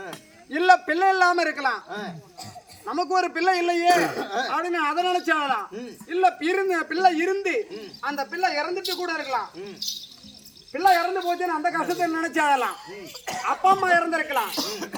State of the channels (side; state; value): both; identical; correlation 1.00